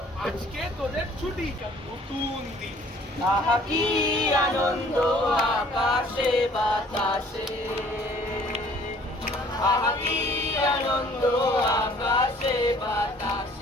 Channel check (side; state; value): both; normal; correlation 0.55